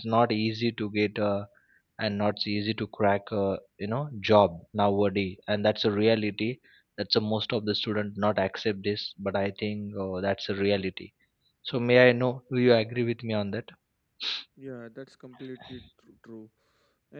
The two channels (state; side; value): identical; both; correlation 1.00